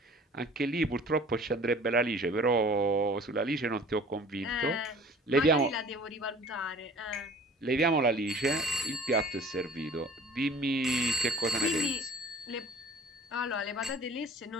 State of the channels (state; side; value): normal; both; correlation 0.46